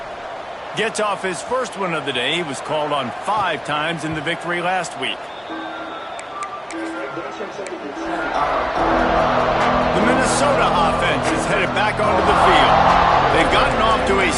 Gets off his first one of the day. He was called on 5 times in the victory last week. The Minnesota offense is headed back onto the field. They've gotten off to a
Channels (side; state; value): both; identical; correlation 1.00